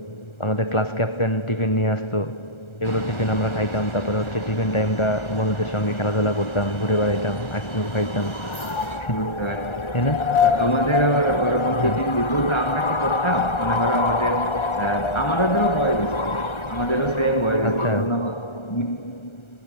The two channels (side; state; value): right; late; 1.3 ms